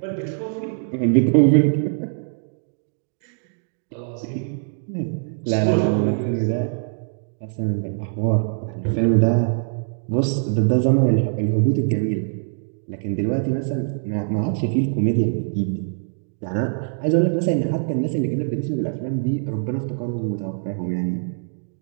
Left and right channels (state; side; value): silent; left; digital silence